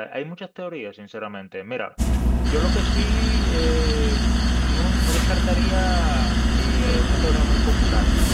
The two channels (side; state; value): both; identical; correlation 1.00